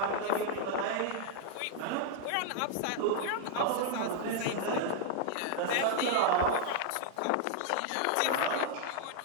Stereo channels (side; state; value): both; different; correlation 0.00